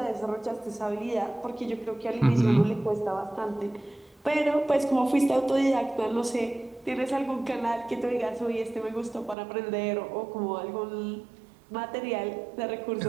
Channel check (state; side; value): drops out; left; at 9.3 s